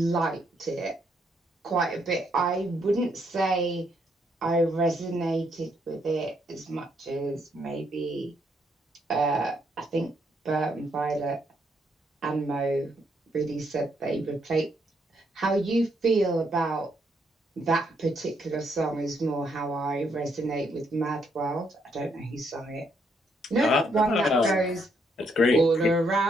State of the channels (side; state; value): both; normal; correlation 0.74